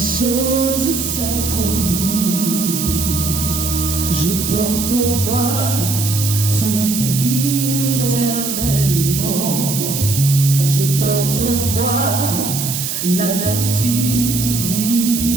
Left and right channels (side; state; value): right; noise; hiss, 3 dB below the sound